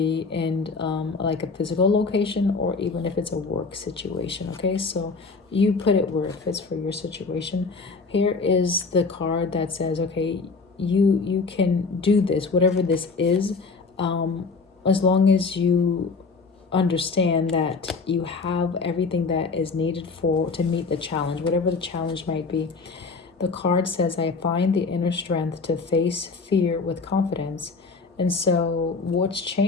in like a physical location, or even if it's a work situation. Okay, so you put it where it fits for your situation. Here is the card that says, okay, you can do this, whatever this is, as long as you understand that you have everything that is needed to meet the challenge, whatever the challenge might be. The card says, I find the inner strength to face fear with confidence. And so what's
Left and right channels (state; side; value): quieter; right; 4.4 dB